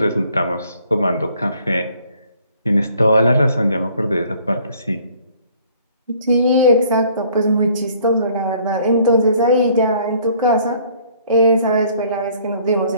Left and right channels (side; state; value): both; inverted; correlation -0.59